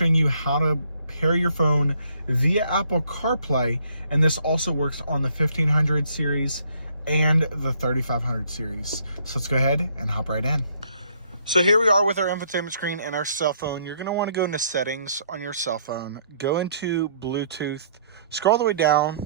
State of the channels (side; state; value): both; inverted; correlation -0.66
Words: you how to pair your phone via Apple CarPlay, and this also works on the 1500 series and the 3500 series. So let's go ahead and hop right in. So here we are with our infotainment screen and our cell phone. You're going to want to go into settings on your cell phone, go into Bluetooth, scroll all the way